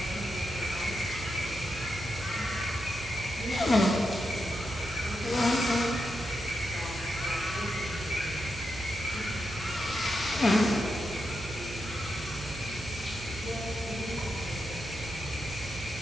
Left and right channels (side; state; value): right; noise; hum, 12 dB below the sound